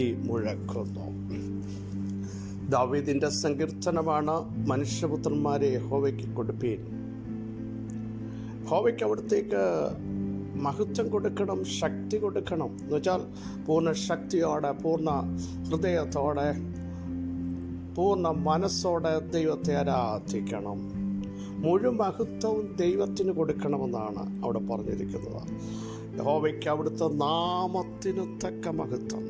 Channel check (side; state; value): both; identical; correlation 1.00